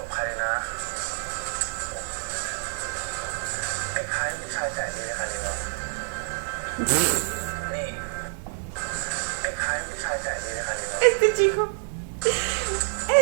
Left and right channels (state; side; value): silent; left; digital silence